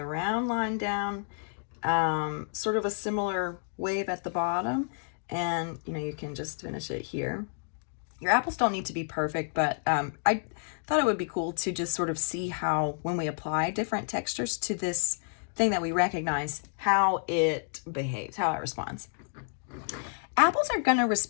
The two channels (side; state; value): right; silent; digital silence